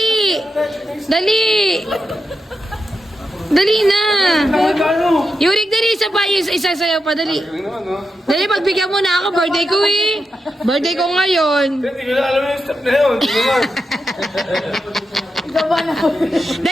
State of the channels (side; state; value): both; normal; correlation 0.87